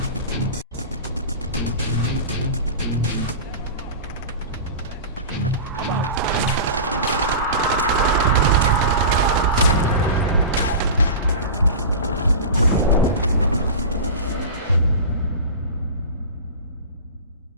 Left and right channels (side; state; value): both; inverted; correlation -0.31